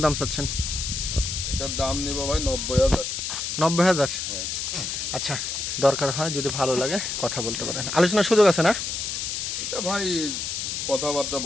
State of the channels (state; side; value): noise; left; hiss, 3 dB below the sound